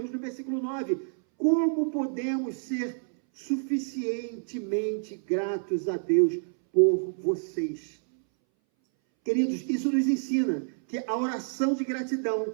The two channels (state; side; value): silent; left; 59 dB below the other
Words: no versículo 9, como podemos ser suficientemente gratos a Deus por vocês? Queridos, isso nos ensina que a oração de gratidão